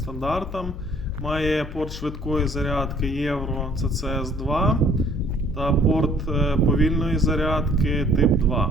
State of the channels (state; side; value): noise; left; hum, 11 dB below the sound